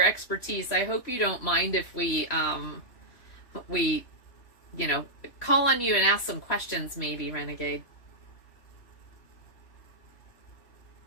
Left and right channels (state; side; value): late; right; 3.1 ms